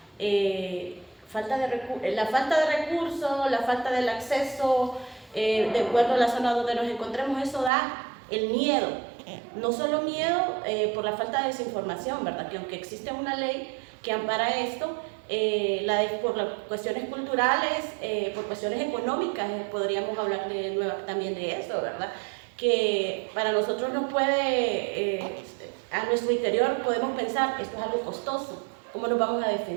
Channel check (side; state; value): left; drops out; at 7.7 s